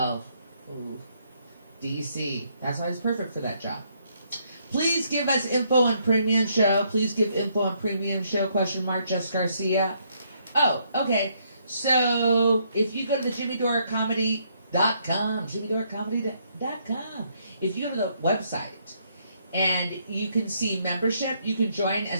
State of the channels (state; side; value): inverted; both; correlation -0.71